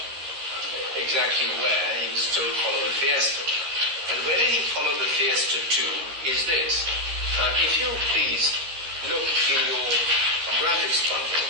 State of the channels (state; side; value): late; left; 13 ms